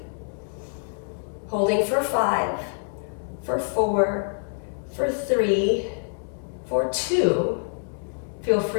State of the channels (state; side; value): silent; right; digital silence